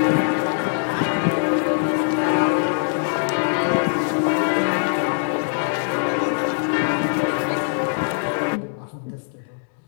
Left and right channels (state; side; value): silent; right; digital silence